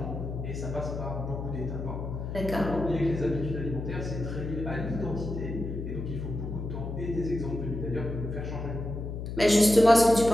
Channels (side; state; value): left; noise; hum, 6 dB below the sound